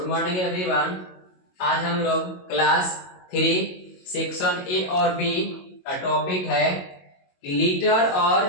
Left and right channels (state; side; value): late; right; 22 ms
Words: morning everyone. आज हम लोग क्लास 3 सेक्शन ए और बी का टॉपिक है कि लीटर